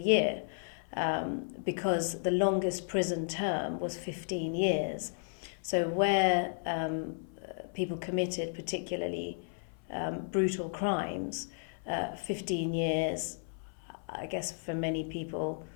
because the longest prison term was 15 years. So where people committed particularly brutal crimes, 15 years, I guess for many people,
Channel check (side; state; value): right; silent; 55 dB below the other